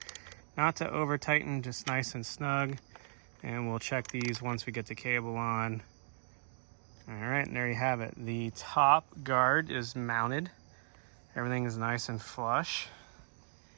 not to over tighten, just nice and snug. And we'll check these once we get the cable on. All right, and there you have it. The top guard is mounted. Everything is nice and flush,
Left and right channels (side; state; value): left; silent; digital silence